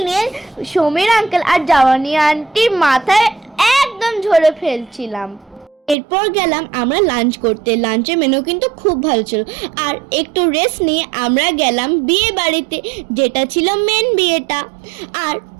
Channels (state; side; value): drops out; left; at 6.0 s